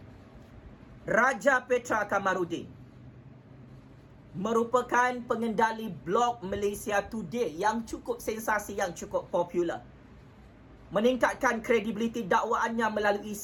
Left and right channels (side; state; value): both; identical; correlation 1.00